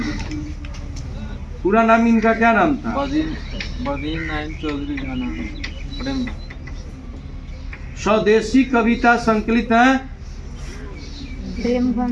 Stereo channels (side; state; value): both; identical; correlation 1.00